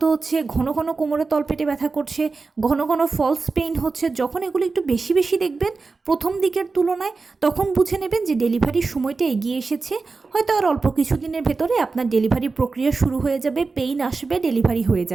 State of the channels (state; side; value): quieter; left; 4.1 dB